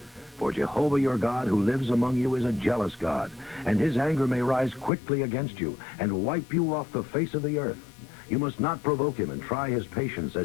For Jehovah your God who lives among you is a jealous God, and his anger may rise quickly against you and wipe you off the face of the earth. You must not provoke him and try his patience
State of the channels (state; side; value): drops out; right; at 4.9 s